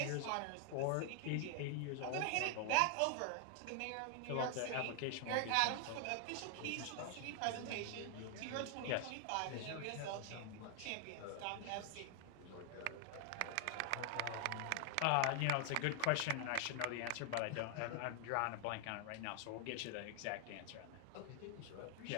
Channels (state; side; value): different; both; correlation 0.00